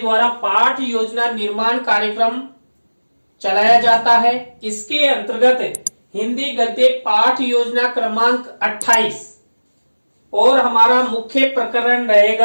पाठ योजना निर्माण कार्यक्रम चलाया जाता है, इसके अंतर्गत हिंदी गद्य पाठ योजना क्रमांक 28 और हमारा मुख्य प्रकरण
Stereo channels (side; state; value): both; inverted; correlation -1.00